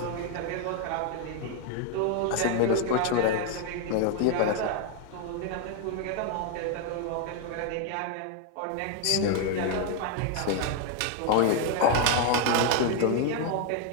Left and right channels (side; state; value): both; different; correlation 0.01